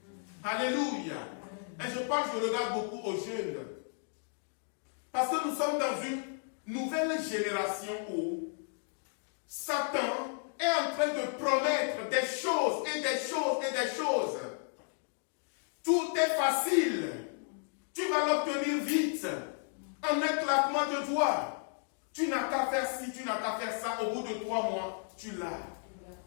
Alléluia. Et je regarde beaucoup aux jeunes. Parce que nous sommes dans une nouvelle génération où Satan est en train de promettre des choses et des choses et des choses. Tout est facile. Tu vas l'obtenir vite. En un claquement de doigts. Tu n'as qu'à faire ci, tu n'as qu'à faire ça. Au bout de 3 mois, tu l'as.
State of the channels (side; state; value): right; silent; 55 dB below the other